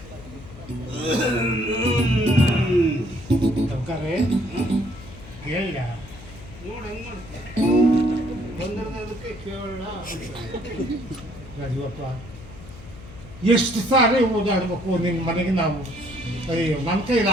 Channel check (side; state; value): left; noise; hum, 17 dB below the sound